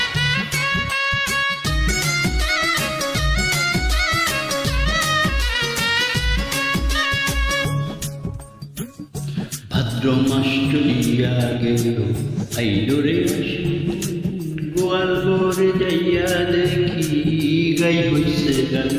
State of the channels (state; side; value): identical; both; correlation 1.00